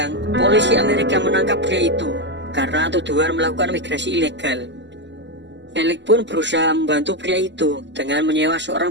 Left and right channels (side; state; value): left; late; 0.52 ms